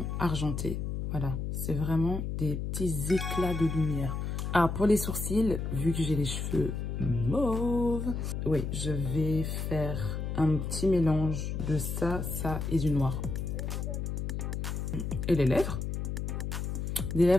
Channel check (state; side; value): noise; left; hum, 3 dB below the sound